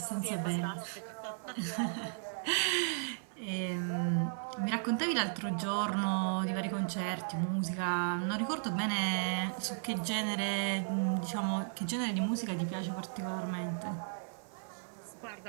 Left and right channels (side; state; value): left; silent; 54 dB below the other